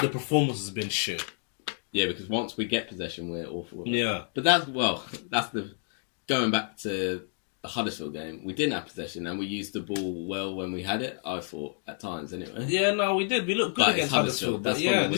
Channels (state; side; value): silent; right; 56 dB below the other